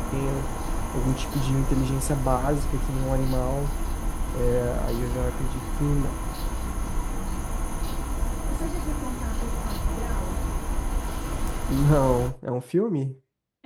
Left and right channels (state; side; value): identical; both; correlation 1.00